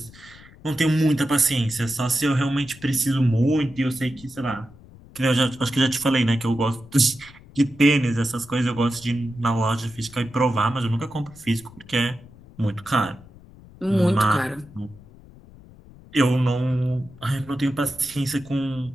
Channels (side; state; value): left; noise; rumble, 22 dB below the sound